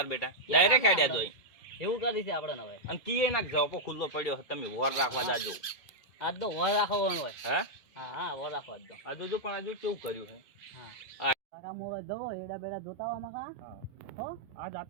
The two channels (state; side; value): late; right; 2.5 ms